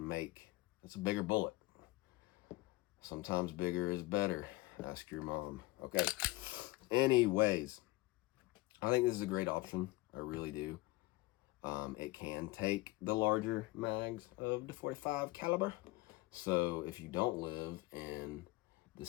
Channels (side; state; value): right; quieter; 20.7 dB